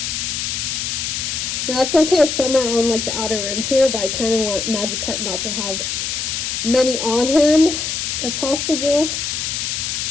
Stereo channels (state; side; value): noise; left; hiss, 2 dB below the sound